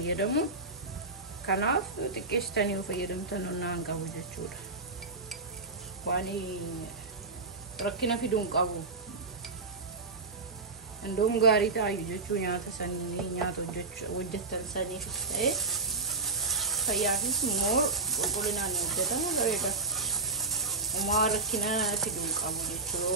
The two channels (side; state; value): left; quieter; 3.7 dB